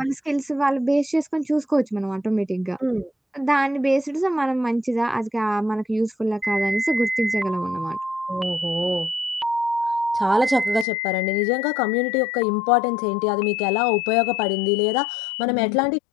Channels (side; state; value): right; drops out; at 10.9 s